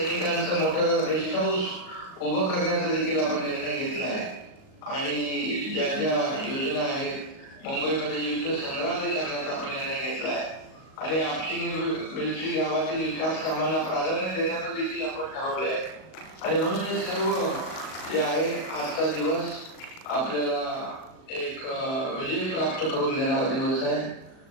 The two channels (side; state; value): right; late; 38 ms